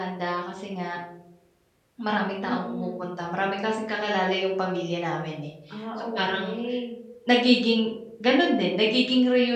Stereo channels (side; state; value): both; identical; correlation 1.00